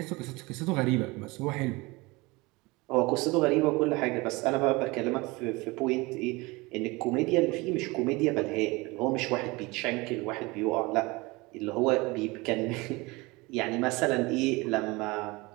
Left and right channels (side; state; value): left; quieter; 23.8 dB